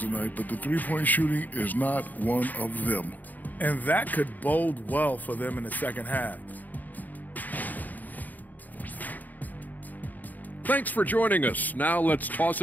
tonight, but the three-point shooting is not one of them. And that could bode well for them in the second half. Thanks for joining us. Now let's toss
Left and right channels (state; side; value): late; right; 0.082 ms